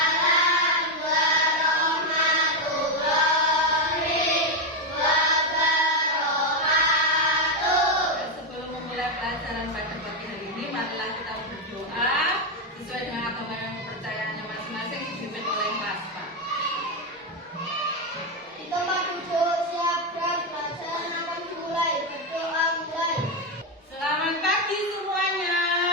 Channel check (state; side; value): normal; both; correlation 0.06